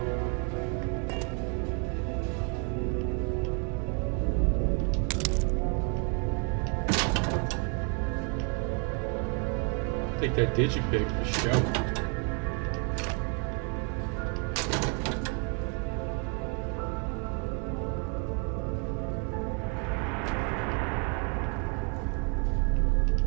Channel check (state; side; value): quieter; left; 37.7 dB